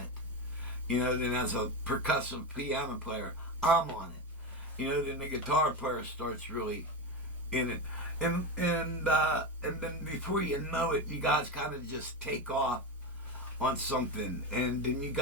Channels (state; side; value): normal; both; correlation 0.17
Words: it. You know, then as a percussive piano player, I'm on it. You know, then the guitar player starts really in it. And then before you know it, you guys kind of just take off on something. And then you